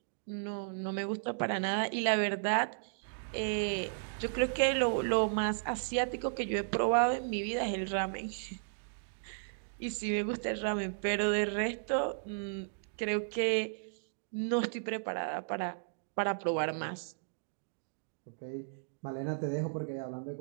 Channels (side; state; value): left; silent; digital silence